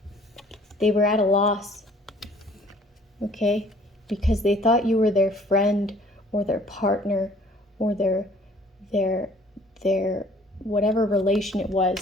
were at a loss, okay? Because they thought you were their friend or their partner or their whatever relation it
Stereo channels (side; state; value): both; normal; correlation 0.56